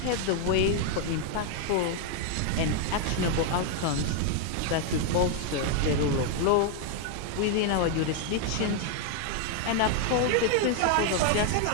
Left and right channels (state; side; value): different; both; correlation 0.00